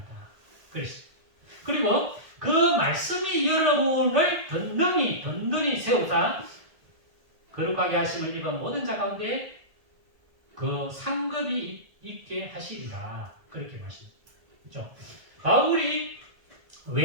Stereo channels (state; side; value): late; left; 1.8 ms